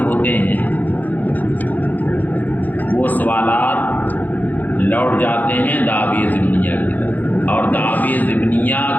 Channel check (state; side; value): late; right; 0.083 ms